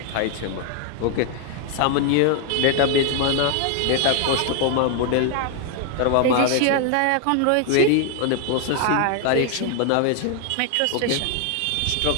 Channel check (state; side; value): different; both; correlation 0.00